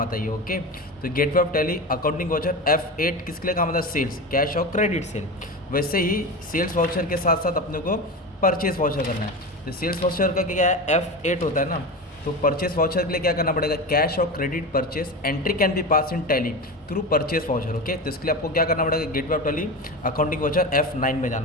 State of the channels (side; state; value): both; normal; correlation 0.24